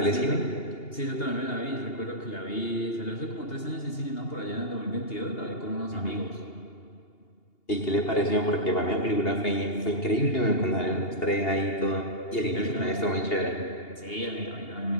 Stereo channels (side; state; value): right; late; 2.8 ms